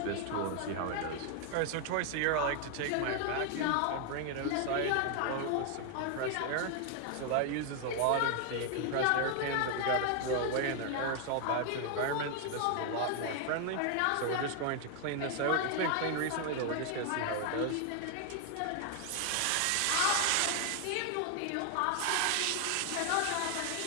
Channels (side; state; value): both; different; correlation 0.00